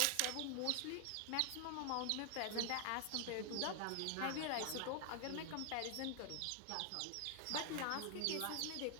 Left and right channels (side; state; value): both; different; correlation 0.00